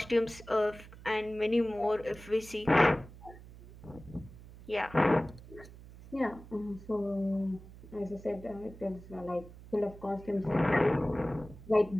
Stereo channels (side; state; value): right; noise; hum, 18 dB below the sound